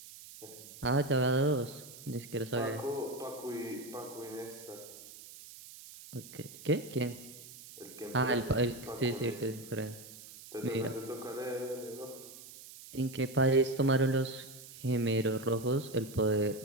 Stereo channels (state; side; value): noise; right; hiss, 16 dB below the sound